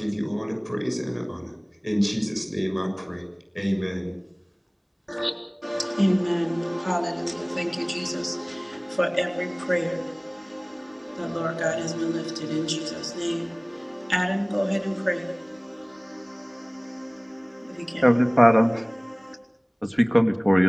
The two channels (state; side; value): identical; both; correlation 1.00